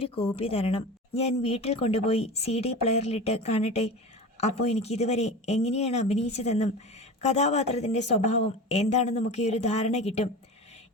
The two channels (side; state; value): both; normal; correlation 0.31